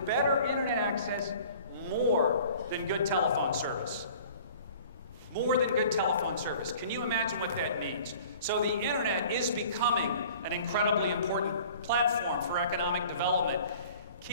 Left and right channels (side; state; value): both; inverted; correlation -0.48